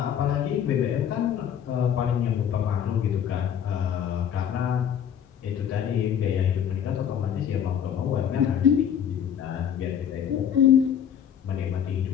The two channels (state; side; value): quieter; right; 8.9 dB